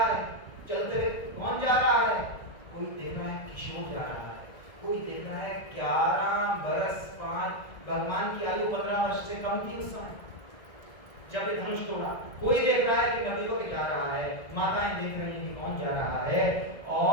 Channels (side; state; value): right; late; 1.7 ms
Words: है? चलते हुए कौन जा रहा है? कोई देख रहा है किशोर जा रहा है, कोई देख रहा है 11 बरस 5, भगवान की आयु 15 वर्ष से कम थी उस समय जब ये धनुष तोड़ा। कोई देख रहा है कि नदी को जा रहा है, माताएं देख रही हैं कि कौन जा रहा है,